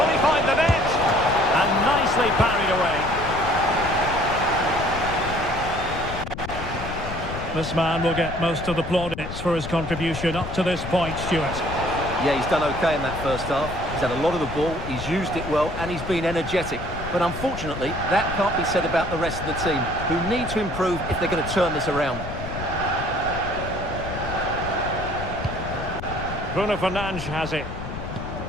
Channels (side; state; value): left; noise; rumble, 8 dB below the sound